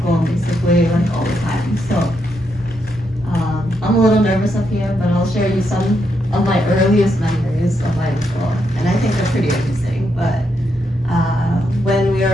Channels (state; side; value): normal; both; correlation 0.80